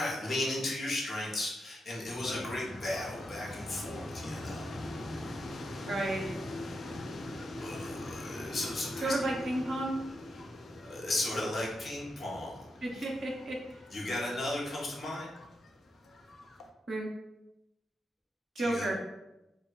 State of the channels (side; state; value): both; normal; correlation 0.85